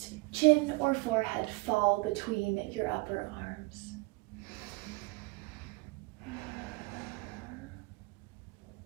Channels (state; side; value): quieter; left; 26.0 dB